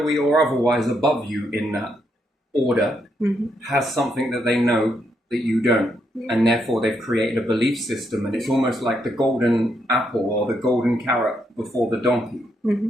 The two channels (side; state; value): both; normal; correlation 0.78